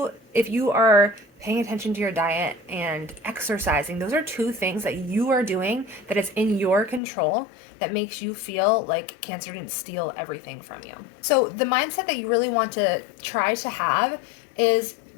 are paying attention to your diet and exercising, those are 2 things that you are doing that is in your control that makes you feel like cancer didn't steal everything from you. So the mindset that you really want to try to have is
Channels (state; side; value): drops out; right; at 7.0 s